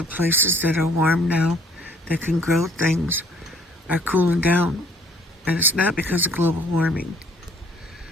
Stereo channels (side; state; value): both; normal; correlation 0.59